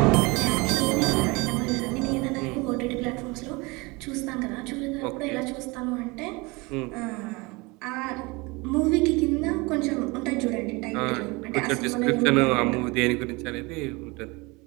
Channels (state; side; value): quieter; left; 25.4 dB